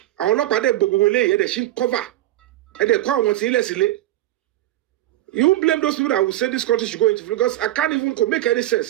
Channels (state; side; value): quieter; left; 14.8 dB